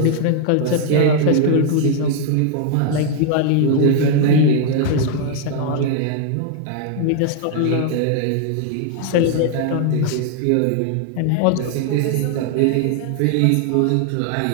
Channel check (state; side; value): different; both; correlation 0.00